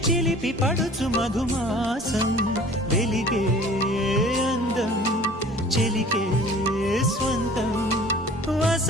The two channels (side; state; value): both; normal; correlation 0.47